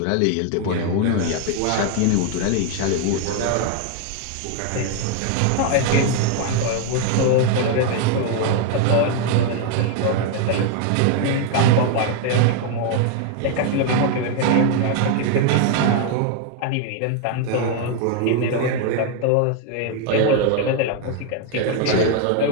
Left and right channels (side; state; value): both; different; correlation 0.01